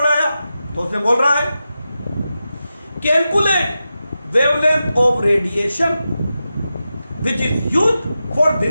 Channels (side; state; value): both; inverted; correlation -0.91